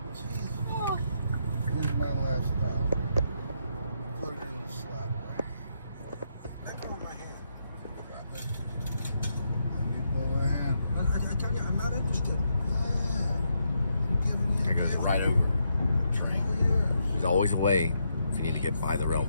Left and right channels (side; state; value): both; inverted; correlation -0.79